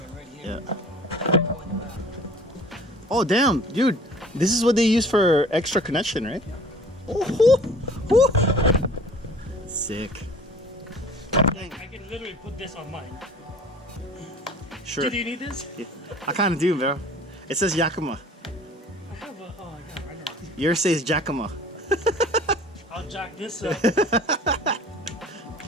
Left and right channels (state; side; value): normal; both; correlation 0.47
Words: right here. Yeah. Oh, damn, dude. This is what they use for extra connection, right? Oh, whoo, whoo. Sick. I can literally put this on mine. Sure. Do you need this? Yeah. I kind of do, bro. It says Yakima. I have a. Oh, I got it right now. Yours says Yakima. I'll jack this up.